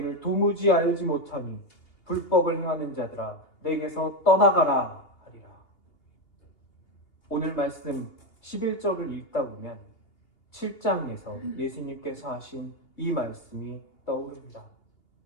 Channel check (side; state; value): right; late; 2.8 ms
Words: 도무지 알지 못하니 불법을 행하는 자들아 내게서 떠나가라 하리라. 오늘 말씀 11절을 읽다 보면 7장에서 예수님께서 하신 이 말씀이 떠오릅니다.